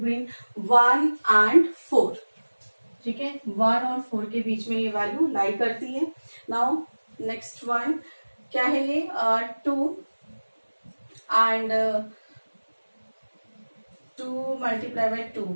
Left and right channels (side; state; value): both; inverted; correlation -1.00